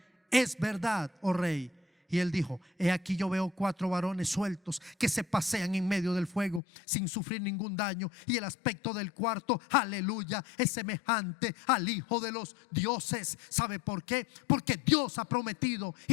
es verdad, oh rey. Y él dijo: he aquí yo veo 4 varones sueltos que se pasean en medio del fuego sin sufrir ningún daño, y el aspecto del cuarto, aleluya, es semejante al Hijo de los dioses. ¿Sabe por qué? Porque Dios ha prometido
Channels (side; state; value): right; drops out; at 6.6 s